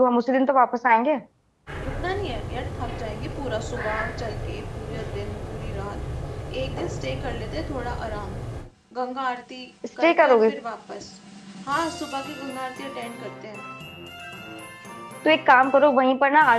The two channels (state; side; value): identical; both; correlation 1.00